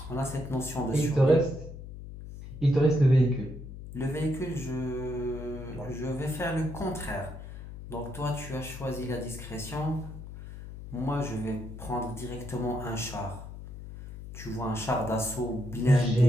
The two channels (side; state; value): left; noise; hum, 11 dB below the sound